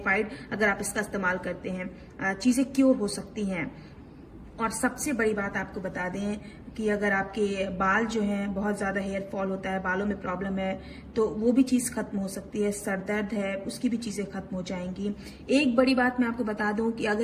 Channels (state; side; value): identical; both; correlation 1.00